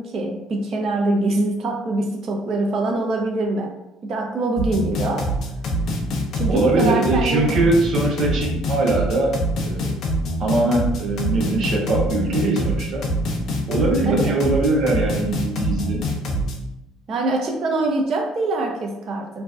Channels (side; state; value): both; normal; correlation 0.59